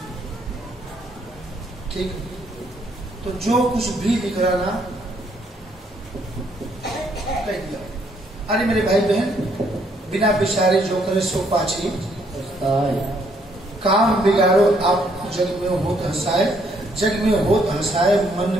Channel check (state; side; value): normal; both; correlation 0.69